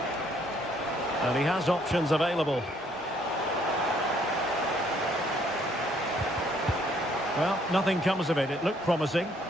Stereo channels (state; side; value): normal; both; correlation 0.65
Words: And he has options available. Well, nothing comes of it. It looked promising.